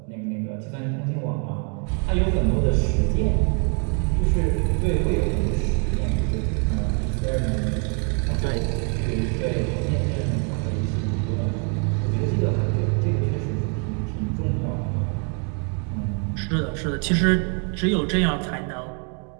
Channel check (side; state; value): left; quieter; 39.4 dB